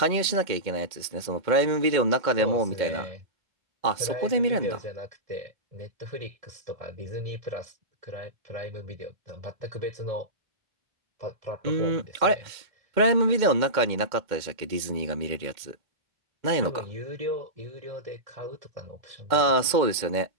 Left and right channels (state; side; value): late; left; 2.1 ms